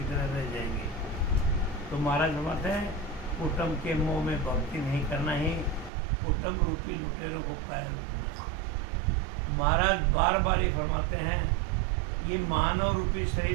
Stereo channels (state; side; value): drops out; left; at 5.9 s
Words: तरह रह जाएंगे। तो महाराज समझते हैं कुटुंब के मोह में भक्ति नहीं करना ही कुटुंब रूपी लुटेरों को कायल रखना। महाराज बार बार ये फरमाते हैं ये मानव रूपी